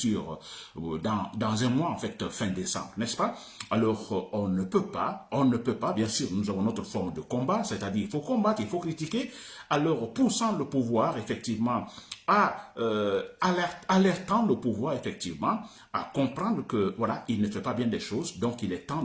dans un mois, en fait, fin décembre, n'est-ce pas? Alors, on ne peut pas, bien sûr, nous avons notre forme de combat, c'est-à-dire il faut combattre, il faut critiquer, alors poussant le pouvoir, effectivement, alertant le pouvoir, effectivement, à comprendre que, voilà, il ne fait pas bien des choses, donc il est temps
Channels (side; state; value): both; identical; correlation 1.00